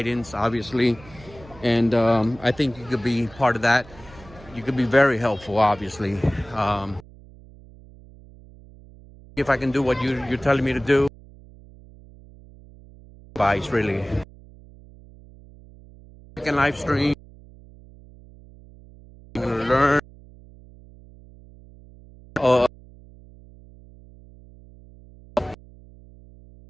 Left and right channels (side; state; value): right; noise; hum, 22 dB below the sound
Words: obviously, and I think you could be part of that. You could be very helpful, obviously. If I can do what you're telling me to do, advice really. Second live stream, learn.